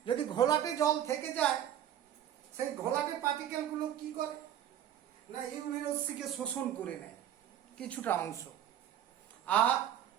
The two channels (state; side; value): quieter; left; 10.6 dB